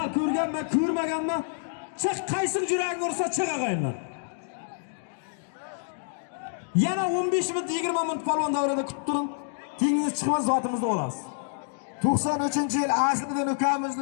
ko'rganman, ko'rmaganman. Chiq qaysi juragi ursa chiq og'aylar. Yana 15 minut 20 minut polvon davrida kutib turing. Tengingiz chiqmasa zotimizni olasiz. 93-yil Asliddin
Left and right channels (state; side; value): silent; right; digital silence